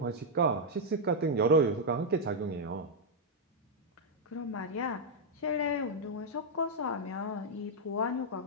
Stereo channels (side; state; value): both; normal; correlation -0.03